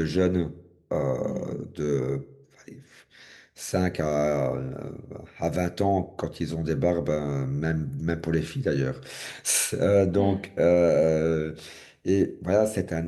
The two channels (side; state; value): both; identical; correlation 1.00